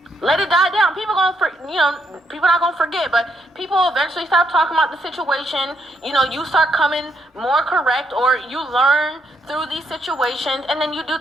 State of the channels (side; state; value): both; normal; correlation 0.77